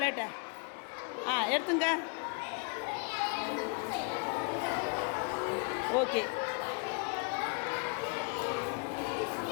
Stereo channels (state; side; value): quieter; right; 35.0 dB